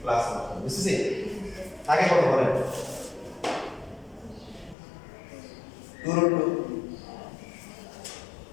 প্লাস বুঝছেন আগে কত বলেন 2√2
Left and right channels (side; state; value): right; drops out; at 4.8 s